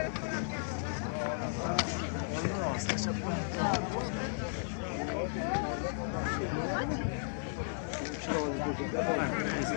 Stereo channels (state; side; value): silent; right; 55 dB below the other